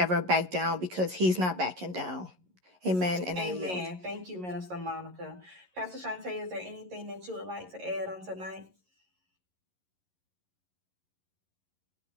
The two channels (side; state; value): left; late; 11 ms